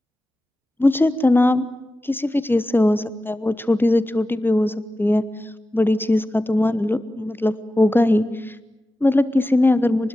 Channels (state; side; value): normal; both; correlation 0.94